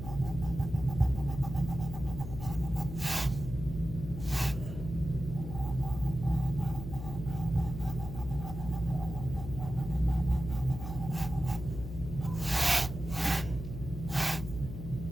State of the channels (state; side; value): noise; left; hum, 8 dB below the sound